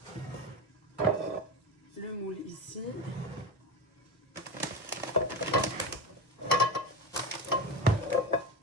Le moule ici.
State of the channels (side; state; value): both; normal; correlation 0.22